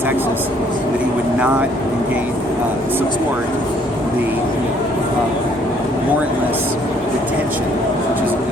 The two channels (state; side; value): normal; both; correlation 0.63